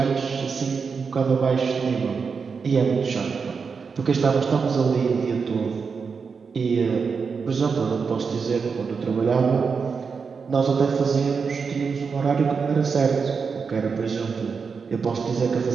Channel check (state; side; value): quieter; left; 5.5 dB